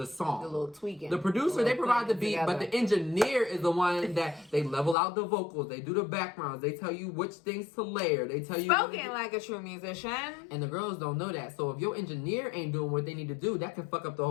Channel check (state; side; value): drops out; right; at 5.0 s